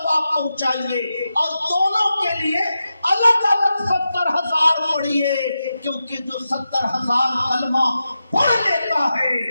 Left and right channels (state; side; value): inverted; both; correlation -0.90